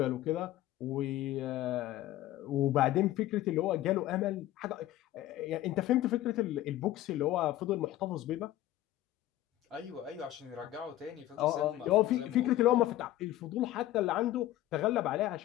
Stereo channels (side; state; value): right; quieter; 14.4 dB